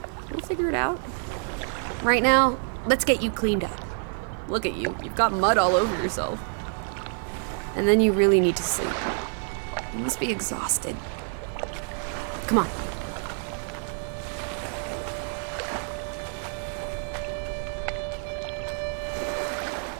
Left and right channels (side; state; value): left; silent; 55 dB below the other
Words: We'll figure it out. Right now, let's get you cleaned up. Look at you. You've got mud all over yourself. And then you really need to sleep. You must be exhausted. Come on.